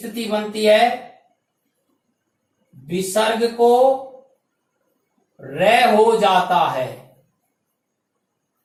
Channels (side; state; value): both; identical; correlation 1.00